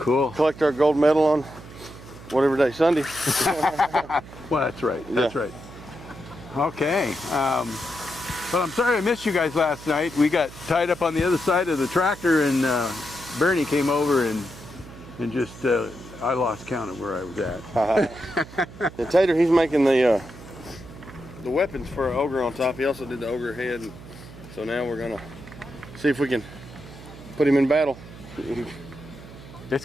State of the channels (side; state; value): right; noise; hum, 17 dB below the sound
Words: Collect our gold medal on whatever day, Sunday. Well, that's right. That's right. Okay. But I'm sorry I missed you guys last night. We got tied up on the other side of the tractor, and Bernie came over and just I lost count of where I was at. The Tater, he's making the weapons for our ogre on top. He also did the ogre head, and so now we're gonna see if we can put him in battle. It's